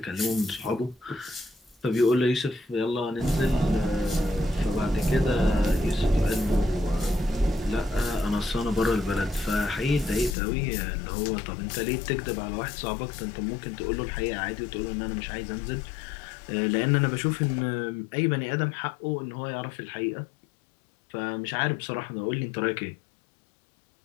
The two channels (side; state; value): right; drops out; at 10.4 s